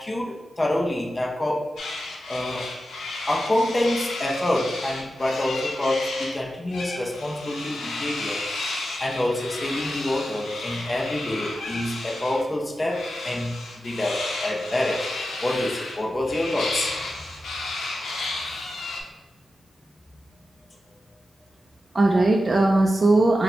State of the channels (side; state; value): both; normal; correlation 0.91